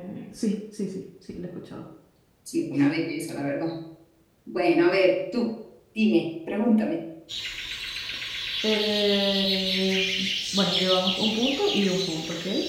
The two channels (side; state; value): both; identical; correlation 1.00